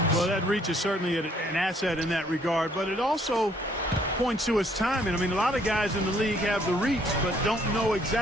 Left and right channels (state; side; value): normal; both; correlation 0.65